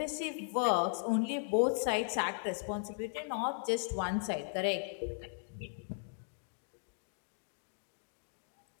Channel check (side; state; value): right; silent; digital silence